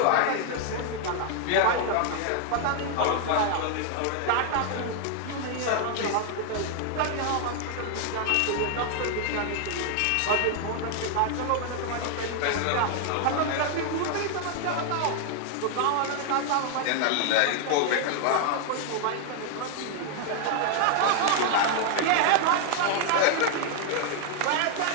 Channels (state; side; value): different; both; correlation 0.00